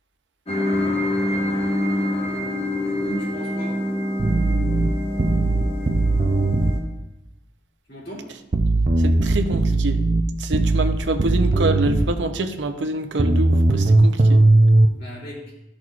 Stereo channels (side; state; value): both; normal; correlation 0.86